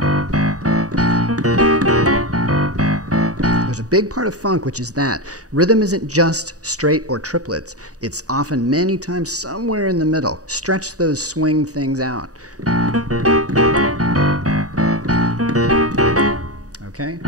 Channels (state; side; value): late; left; 0.66 ms